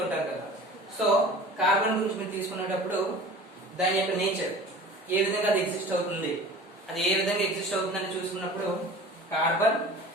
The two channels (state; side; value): normal; both; correlation 0.41